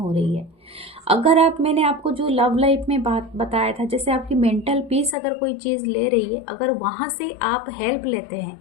रही है। अगर आप, मैंने आपको जो लव लाइफ में बात बताया था, जैसे आपकी मेंटल पीस अगर कोई चीज़ ले रही है, अगर वहाँ से आप हेल्प लेते हैं,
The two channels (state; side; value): drops out; right; at 5.2 s